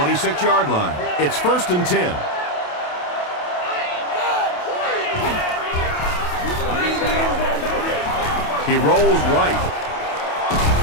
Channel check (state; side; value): late; right; 28 ms